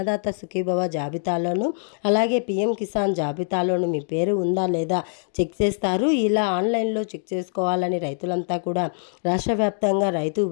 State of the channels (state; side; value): silent; right; 59 dB below the other